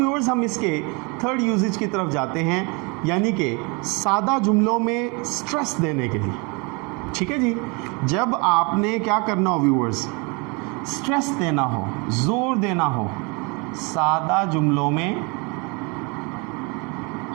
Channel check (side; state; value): left; quieter; 30.6 dB